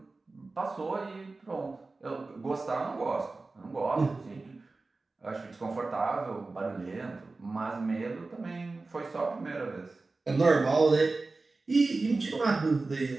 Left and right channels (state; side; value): quieter; left; 3.5 dB